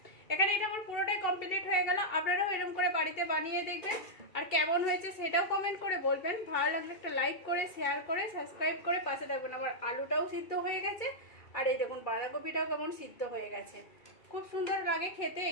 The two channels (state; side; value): late; right; 2.3 ms